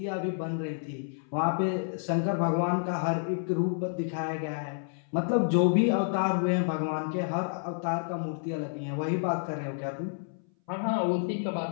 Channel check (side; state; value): right; silent; 58 dB below the other